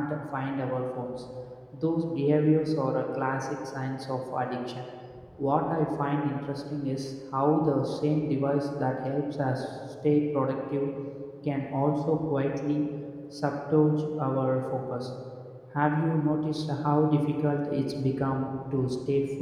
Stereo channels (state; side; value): identical; both; correlation 1.00